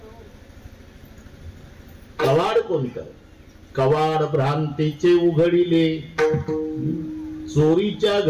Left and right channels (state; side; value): identical; both; correlation 1.00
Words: कवाड कोणतं? कवाड भ्रांतीचे उघडिले. चोरीच्या